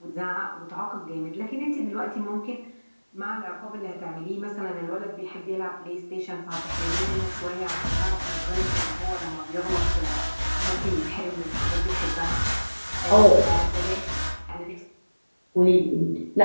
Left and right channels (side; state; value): both; inverted; correlation -1.00